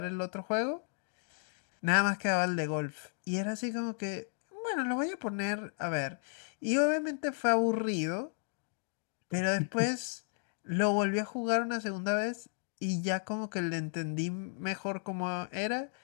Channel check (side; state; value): right; silent; 55 dB below the other